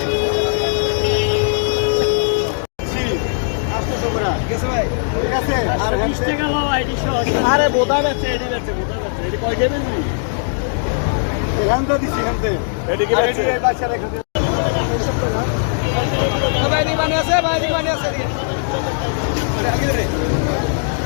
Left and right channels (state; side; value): silent; right; digital silence